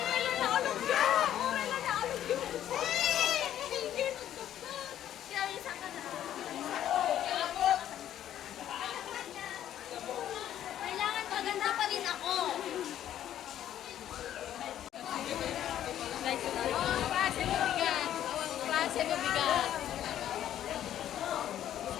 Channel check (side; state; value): right; quieter; 11.4 dB